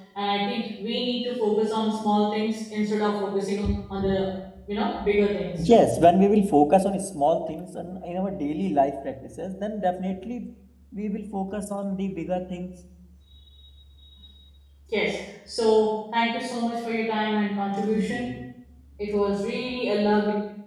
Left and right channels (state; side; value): identical; both; correlation 1.00